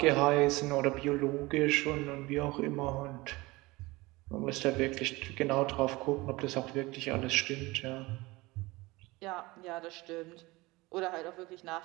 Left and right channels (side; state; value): left; quieter; 21.7 dB